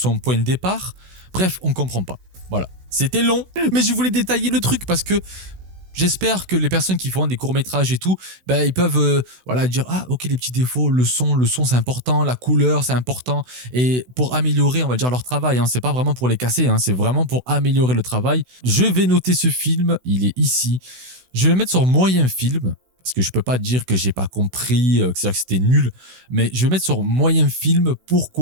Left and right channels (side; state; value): left; late; 16 ms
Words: point de départ? Bref, on comprend pas. Voilà. C'était long, mais je voulais détailler le truc parce que j'espère que les personnes qui font des courts-métrages et tout, ben, ils peuvent voilà, dire « Ah, ok, les petits défauts, le son c'est important, la couleur, c'est important. » Et pour améliorer, on va dire, leur travail, hein, c'est pas vraiment pour les casser, hein, c'est vraiment pour améliorer le travail. Je vais noter ce film, il est ici. Je vais le mettre sur moyen film. Parce que je peux pas dire que j'ai pas compris, que c'était nul, mais je vais mettre sur moyen film.